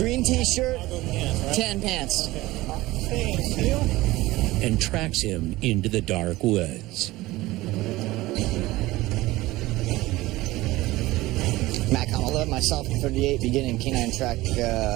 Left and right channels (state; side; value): quieter; left; 18.5 dB